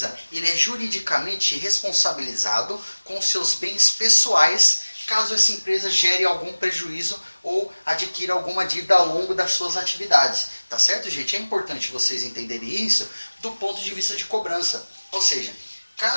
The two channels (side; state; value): both; inverted; correlation -1.00